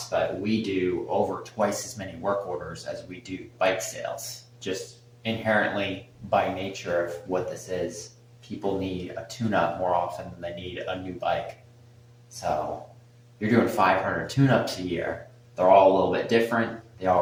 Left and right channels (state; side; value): identical; both; correlation 1.00